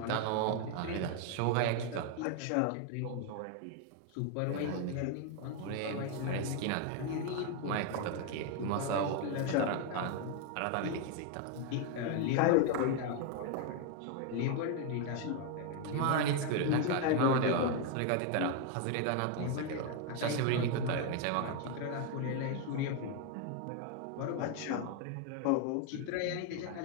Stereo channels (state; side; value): different; both; correlation 0.01